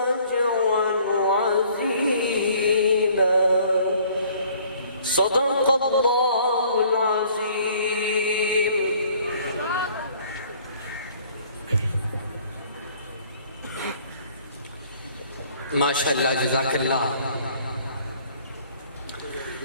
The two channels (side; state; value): both; inverted; correlation -0.57